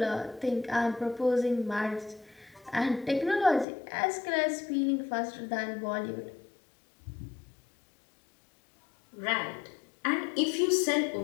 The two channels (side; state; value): right; drops out; at 3.7 s